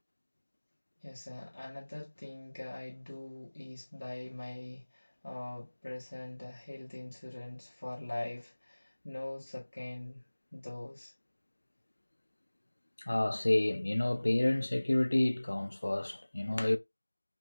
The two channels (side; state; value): both; inverted; correlation -1.00